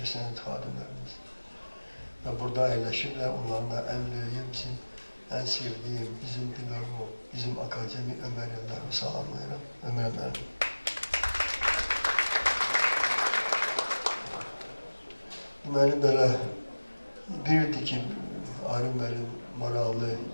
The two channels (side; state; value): both; inverted; correlation -1.00